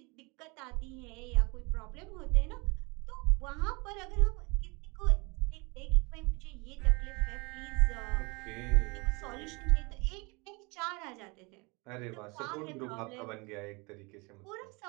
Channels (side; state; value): left; quieter; 28.1 dB